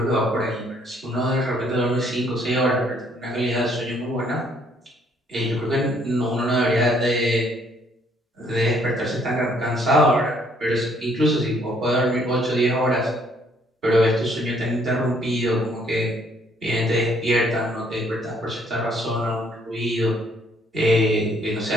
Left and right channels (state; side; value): normal; both; correlation 0.66